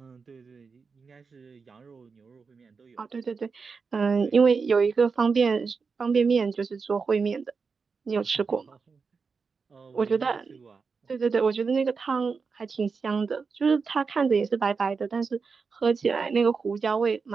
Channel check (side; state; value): left; quieter; 5.0 dB